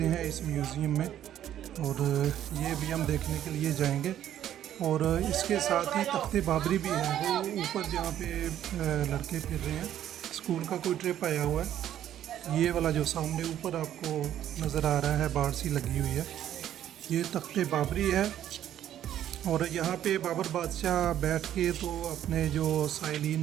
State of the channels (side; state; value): left; quieter; 11.2 dB